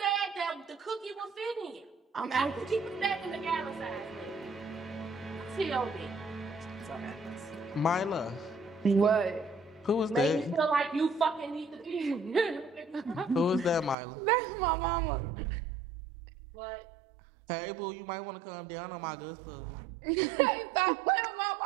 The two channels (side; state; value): left; drops out; at 14.0 s